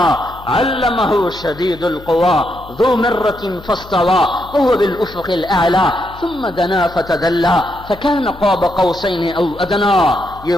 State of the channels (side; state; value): left; noise; hum, 19 dB below the sound